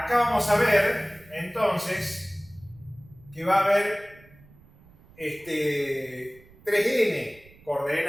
vamos a ver, entonces, que va a haber 3n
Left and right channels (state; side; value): noise; right; rumble, 26 dB below the sound